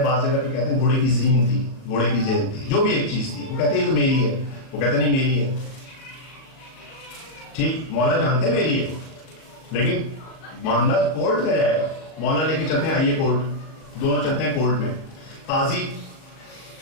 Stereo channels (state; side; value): late; right; 38 ms